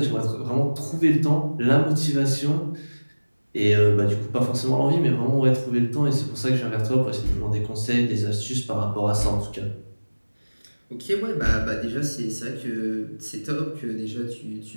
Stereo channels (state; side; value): inverted; both; correlation -1.00